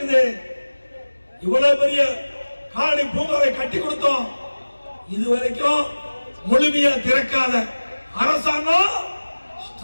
இவ்வளவு பெரிய கால்நடை பூங்காவை கட்டி கொடுத்தோம். இதுவரைக்கும் முழுமையா திறக்காத அரசாங்கம்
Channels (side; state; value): both; inverted; correlation -1.00